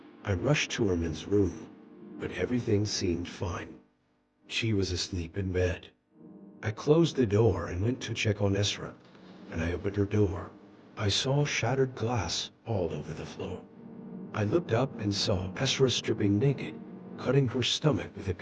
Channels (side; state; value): both; identical; correlation 1.00